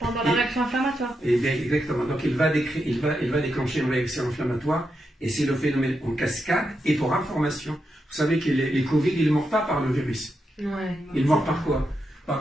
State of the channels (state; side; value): normal; both; correlation 0.85